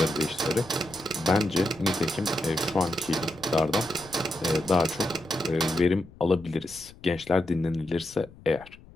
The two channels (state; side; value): noise; left; rumble, 21 dB below the sound